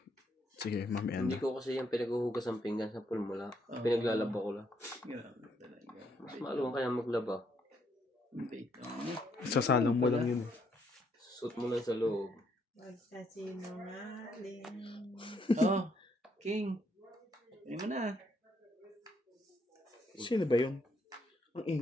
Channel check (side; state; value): both; normal; correlation 0.73